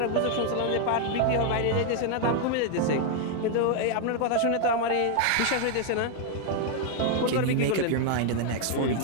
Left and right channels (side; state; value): both; different; correlation 0.00